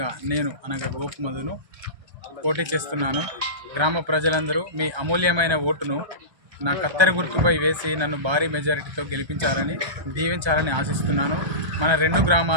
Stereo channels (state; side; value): late; left; 1.3 ms